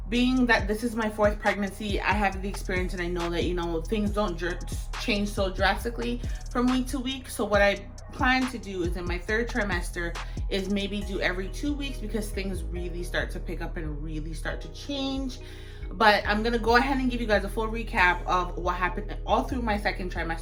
being that this is my fourth pregnancy, I have the experience and I know that, things don't change so drastically from week to week. So what I plan to do is in my third trimester is maybe do every 2 weeks because things really start to pick up and really start to change. But I'm gonna go ahead and give you guys a full recap of what happened all through my second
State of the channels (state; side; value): identical; both; correlation 1.00